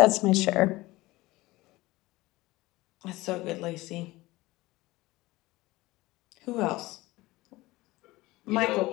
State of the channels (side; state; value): right; quieter; 19.7 dB